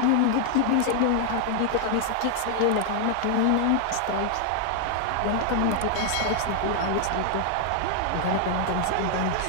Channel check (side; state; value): both; different; correlation 0.00